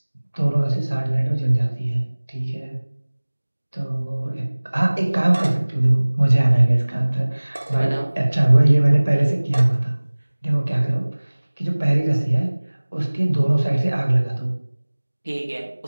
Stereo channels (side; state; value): both; inverted; correlation -1.00